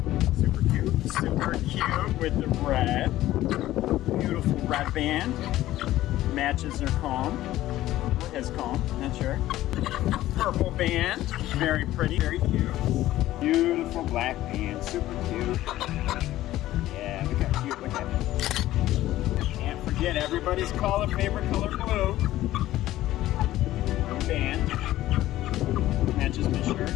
Super cute. Super cute with the red. Beautiful red band. Matches their comb. Or his comb, not sure. Purple band. Very pretty, very cute. Beautiful black band. Super cute. Yeah, look how cute. Look at it. Can't forget everybody's favorite color, blue. Band. Matches my shirt.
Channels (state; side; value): quieter; right; 14.9 dB